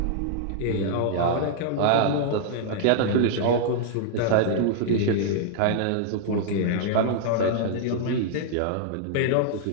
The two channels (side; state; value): both; different; correlation -0.01